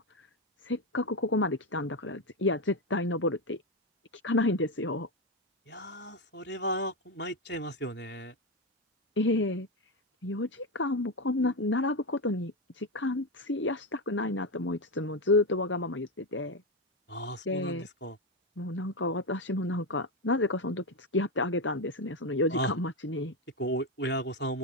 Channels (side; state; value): both; normal; correlation 0.11